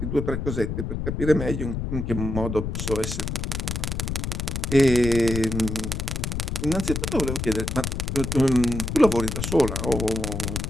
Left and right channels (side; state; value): left; noise; rumble, 3 dB below the sound